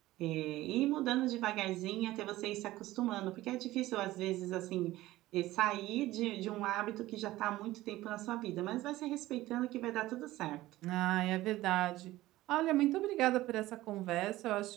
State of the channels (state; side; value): quieter; left; 16.8 dB